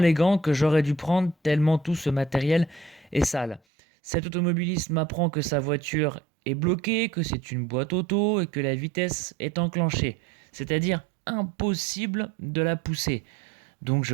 gants que j'aurais dû prendre tellement tout ce matériel est sale. Cet automobiliste m'apprend que sa voiture est bloquée, que c'est une boîte auto et que la vitesse est enclenchée. C'est-à-dire impossible de la pousser. Donc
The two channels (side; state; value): left; drops out; at 3.6 s